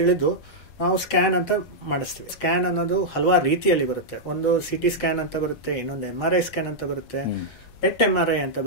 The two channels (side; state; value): right; late; 7.8 ms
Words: ನಾವು ಸ್ಕ್ಯಾನ್ ಅಂತ ಮಾಡಿಸ್ತೀವಿ. ಸ್ಕ್ಯಾನ್ ಅನ್ನೋದು ಹಲವಾರು ರೀತಿಯಲ್ಲಿ ಬರುತ್ತೆ. ಒಂದು CT ಸ್ಕ್ಯಾನ್ ಅಂತ ಬರುತ್ತೆ, ಇನ್ನೊಂದು MRI ಸ್ಕ್ಯಾನ್ ಅಂತ ಬರುತ್ತೆ, PET MRI ಅಂತ